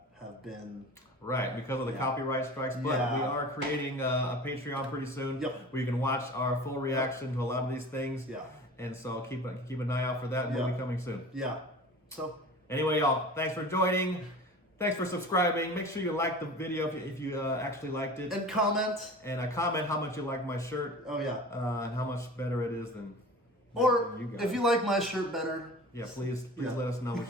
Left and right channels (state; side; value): normal; both; correlation 0.39